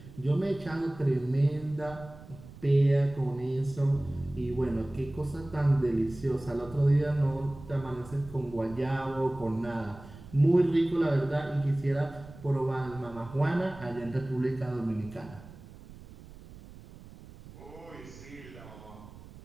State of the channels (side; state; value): right; noise; rumble, 18 dB below the sound